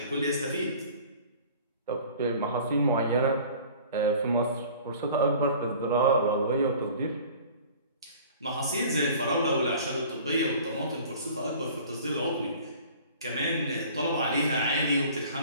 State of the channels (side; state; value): both; inverted; correlation -0.47